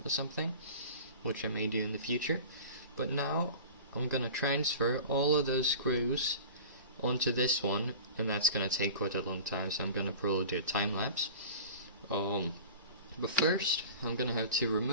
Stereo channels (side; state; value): both; inverted; correlation -0.38